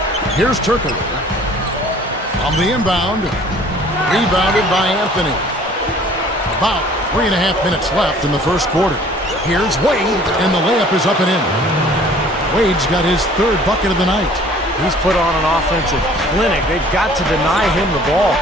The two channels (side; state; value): both; normal; correlation 0.52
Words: Here's Turkoglu. On the inbound. Rebounded by Anthony. About 3.5 minutes left in the first quarter. Here's Wade, and the layup is up and in. Wade's got his third bucket of the night. He's put on an offensive clinic. They've got to deny him the ball.